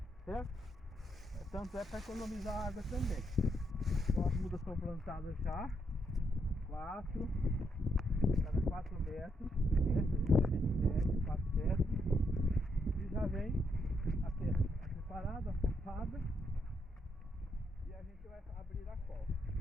certo? Tanto é para economizar água também. Então as mudas estão plantadas já, cada 4 metros, né? A gente mede 4 metros e já vem a terra preparada, afofada, e a gente vai abrir a cova.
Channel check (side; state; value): both; normal; correlation 0.78